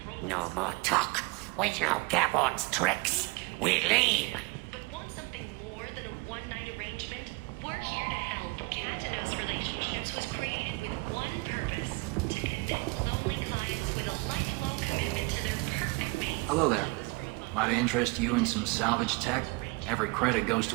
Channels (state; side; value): quieter; left; 26.4 dB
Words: No more talk. We know Gavon's tricks. We leave. Hello there. Might I interest you in some salvage tech? Every credit goes